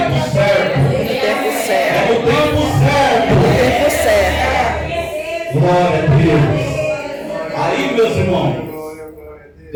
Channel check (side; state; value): both; identical; correlation 1.00